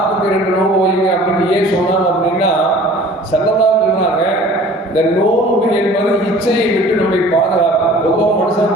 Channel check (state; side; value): normal; both; correlation 0.47